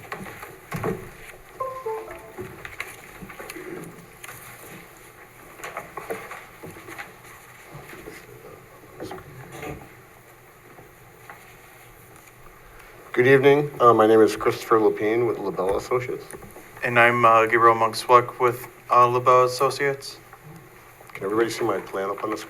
Good evening. My name is Christopher Lapine with LaBelle Associates. And I'm Gabriel Monkswuk with LaBelle Associates. Can everybody see my plan up on the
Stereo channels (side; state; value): both; identical; correlation 1.00